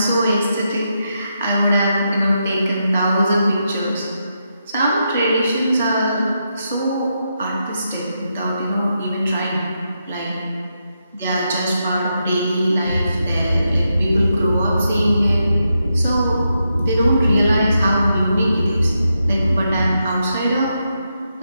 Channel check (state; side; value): inverted; both; correlation -0.84